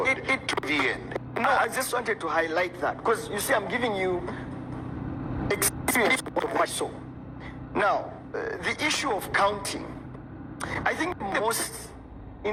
to the end. No, I just wanted to highlight that, because you see, I'm giving you experience of what I saw. Now, the issue of counting, I think the most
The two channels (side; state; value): both; identical; correlation 1.00